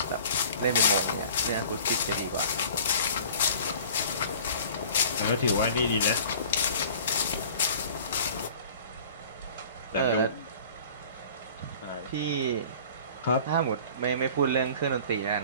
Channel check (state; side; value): inverted; both; correlation -0.46